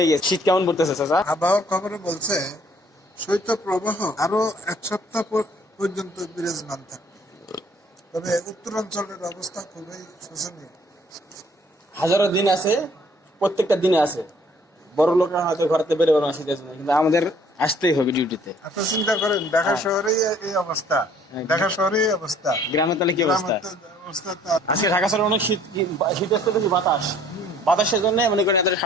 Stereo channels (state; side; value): normal; both; correlation 0.59